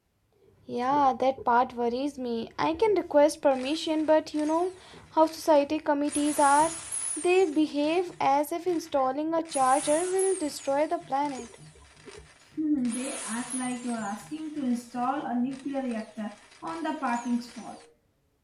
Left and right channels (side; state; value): both; identical; correlation 1.00